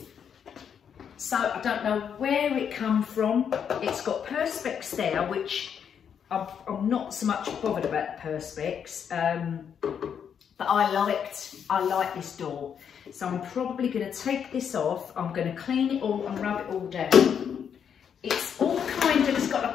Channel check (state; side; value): quieter; right; 7.8 dB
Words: So I don't know where it come from. It's got perspex there, which I'm not so much bothered about the perspex, but I like this door. So I'm probably going to take this off. I'm going to clean it all and rub it all down. It's all kind of, it's got